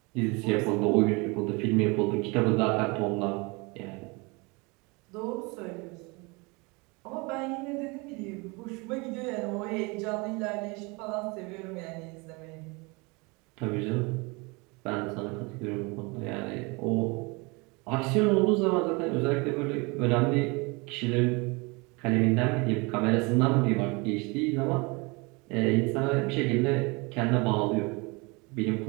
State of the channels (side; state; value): left; quieter; 27.7 dB